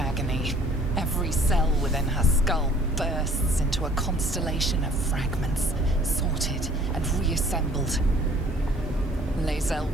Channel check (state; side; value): normal; both; correlation 0.54